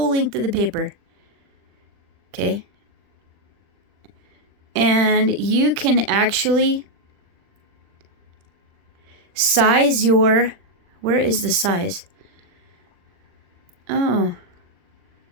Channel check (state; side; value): late; left; 40 ms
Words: length of the paper. Okay. And you can actually size your... Where is the size? Oh.